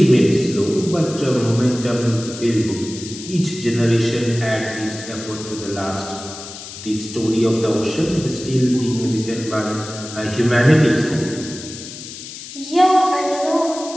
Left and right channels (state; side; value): noise; left; hiss, 12 dB below the sound